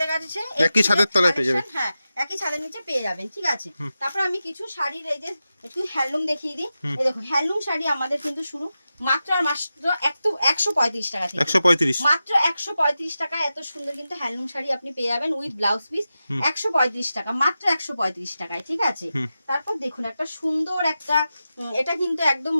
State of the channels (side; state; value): both; inverted; correlation -0.92